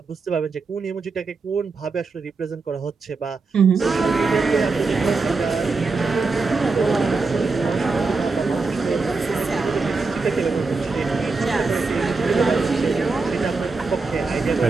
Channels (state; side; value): quieter; left; 4.1 dB